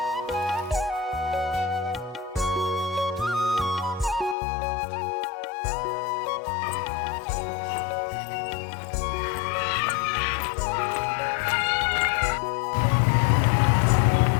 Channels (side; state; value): right; drops out; at 4.4 s